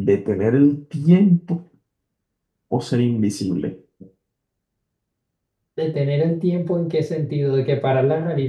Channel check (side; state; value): both; identical; correlation 1.00